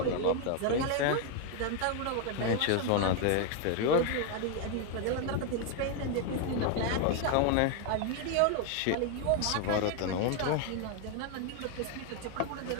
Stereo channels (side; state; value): both; different; correlation 0.01